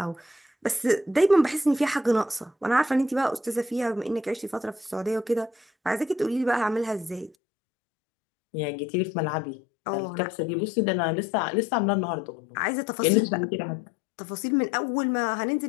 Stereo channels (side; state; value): right; drops out; at 7.4 s